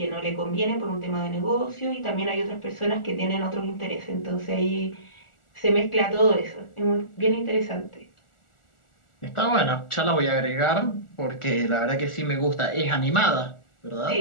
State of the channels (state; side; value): late; right; 1.4 ms